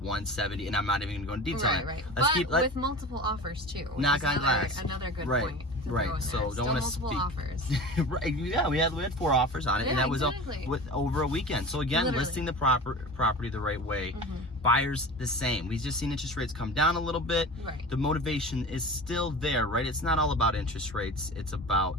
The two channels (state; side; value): normal; both; correlation 0.35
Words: And I'm not even going to go into detail. Right. With multiple offers too. Knock on glass. Another good point. Right. So don't want to speak. Offers. Right. Yeah, we had 4 offers on it, and that was with over a weekend. So again, listing the property the right way. Buyers the same. We've just seen interest rates come down a little bit. Right. The motivation is still there, right? It's not all about interest rates. It's